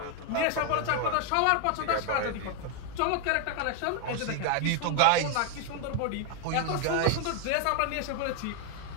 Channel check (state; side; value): different; both; correlation 0.01